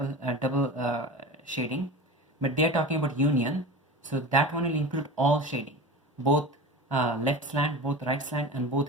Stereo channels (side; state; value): both; normal; correlation 0.32